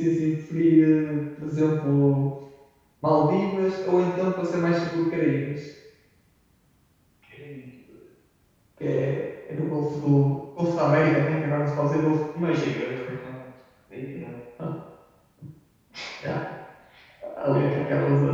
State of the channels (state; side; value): identical; both; correlation 1.00